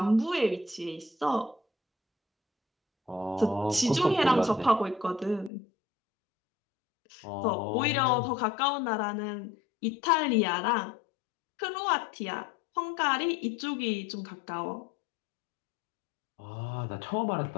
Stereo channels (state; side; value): drops out; right; at 5.5 s